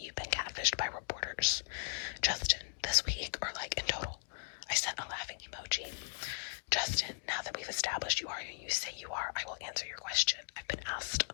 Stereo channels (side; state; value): right; silent; digital silence